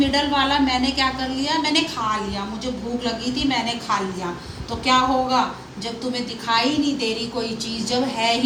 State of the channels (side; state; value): both; identical; correlation 1.00